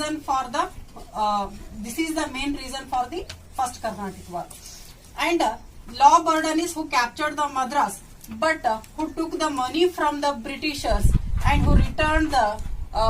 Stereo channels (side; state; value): both; identical; correlation 1.00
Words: for the this is the main reason for the first Carnatic War. And law Bourdonnais, who captured the Madras, but who took the money from the Britishers and who returned the